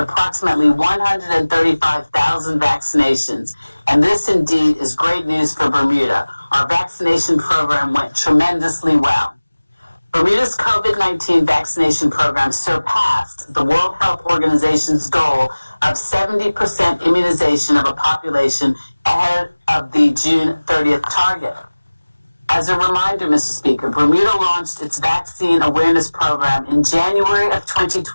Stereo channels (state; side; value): inverted; both; correlation -1.00